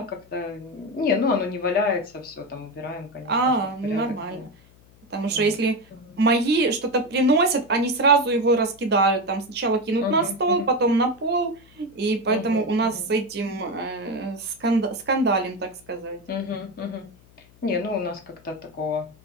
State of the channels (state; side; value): noise; left; hum, 27 dB below the sound